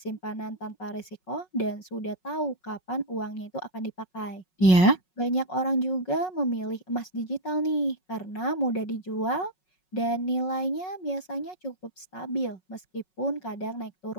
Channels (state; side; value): late; right; 5.4 ms